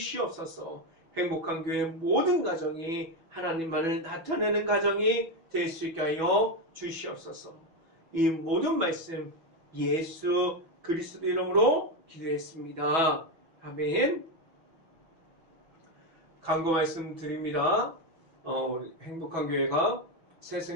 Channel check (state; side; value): late; left; 6.1 ms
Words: 행복한 교회 모든 가정이 하나님만을 나타내는 가정이 될 수 있게 하여 주시옵소서. 이 모든 말씀 예수 그리스도 이름으로 기도했습니다. 아멘. 강구 말씀 드립니다. 행복한 교회가